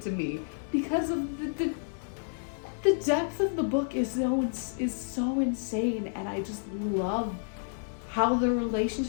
me, because of the depth of the book is so insane, and I just love how the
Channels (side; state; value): right; silent; digital silence